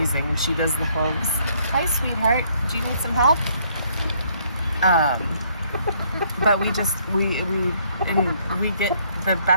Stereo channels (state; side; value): inverted; both; correlation -0.67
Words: and she does the hooves. Hi, sweetheart. Do you need some help? But we get the